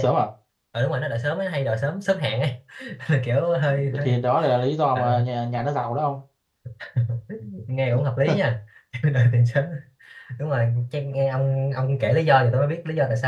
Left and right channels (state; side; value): identical; both; correlation 1.00